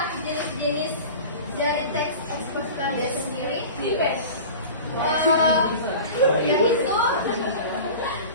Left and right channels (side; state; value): both; inverted; correlation -0.36